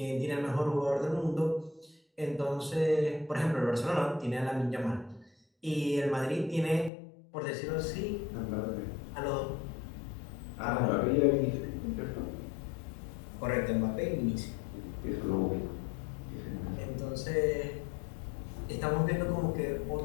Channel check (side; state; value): right; drops out; at 6.9 s